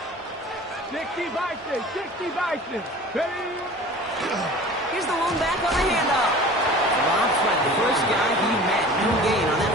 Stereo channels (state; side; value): normal; both; correlation 0.42